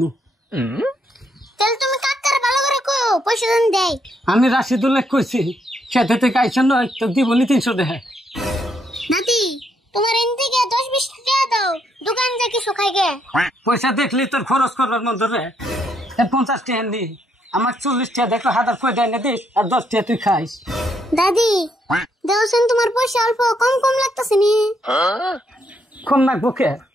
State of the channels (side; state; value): both; normal; correlation 0.75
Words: তাহলে তুমি কাকার ভালো করে কও পয়সা দেন দেয় আমি রাশিদুল্লাহ কইছি খেতে থেকে আইসন নয় তো দিবনি 300 টাকা দাদি তোমার এন থেকে 10-20 টাকা দাও দোকান যা কিছু খাই গে পয়সা দেখলি তোর খরচ করবার মন ধরে 50 টাকা নি আমার 40 টাকা দেখো হাজার কই দেয় না দিস আর 10 টাকা তুই খাইস দাদি দেওছেন তোমার পয়সা অল্প কম কম লাগতেছে নি কম না বুকে